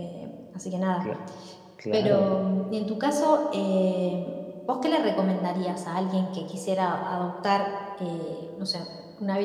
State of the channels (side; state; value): both; identical; correlation 1.00